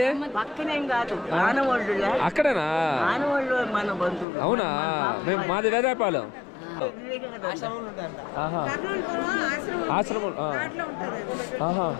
పక్కనేం కాదు, ఆనవాళ్ళు. అక్కడేనా? ఆనవాళ్ళు మన బంధువులు. అవునా? మాది వేదాయపాలెం. ఆశ్రమం.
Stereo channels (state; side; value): drops out; right; at 4.2 s